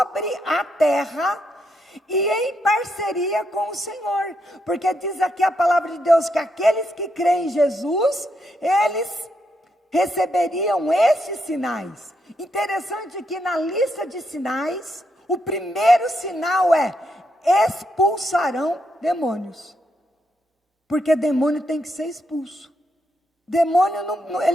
a terra e em parceria com o Senhor, porque diz aqui a palavra de Deus que aqueles que creem em Jesus, eles receberiam esses sinais. Interessante que na lista de sinais, o primeiro sinal é: expulsarão demônios. Porque demônio tem que ser expulso. Demônio,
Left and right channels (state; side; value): normal; both; correlation 0.79